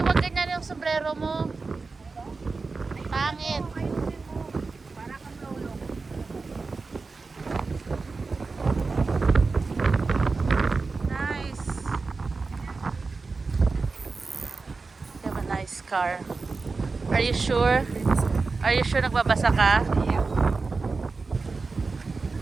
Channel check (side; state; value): left; quieter; 4.1 dB